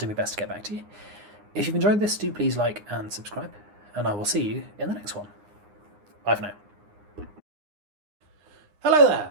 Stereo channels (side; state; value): left; late; 9.7 ms